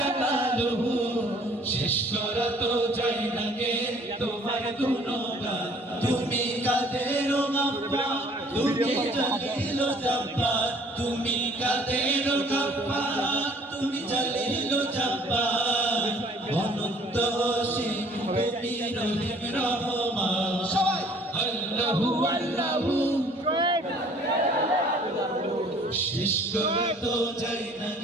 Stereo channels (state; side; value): normal; both; correlation 0.55